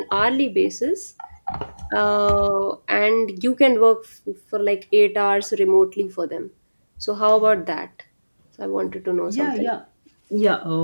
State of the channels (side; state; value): both; inverted; correlation -1.00